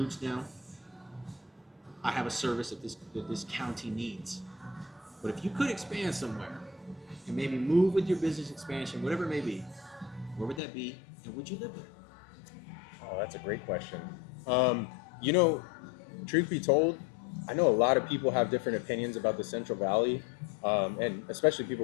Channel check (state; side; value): drops out; right; at 10.6 s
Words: down. I have a service that this county needs. But if you could expand somewhere and maybe move with your business expansion, whatever it may be, where would that be? And would you live there? Oh, that's a great question. You know, truth be told, I know a lot of people have different opinions about the Central Valley, and especially